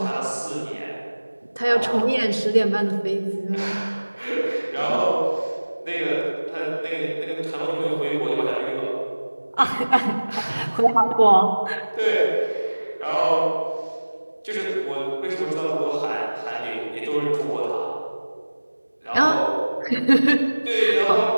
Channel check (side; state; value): both; inverted; correlation -1.00